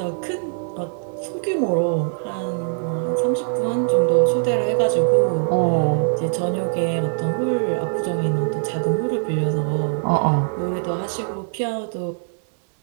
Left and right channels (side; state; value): left; silent; digital silence